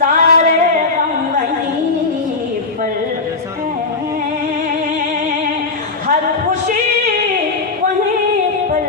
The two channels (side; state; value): right; quieter; 3.8 dB